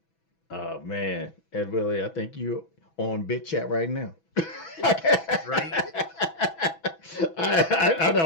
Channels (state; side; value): late; right; 6.1 ms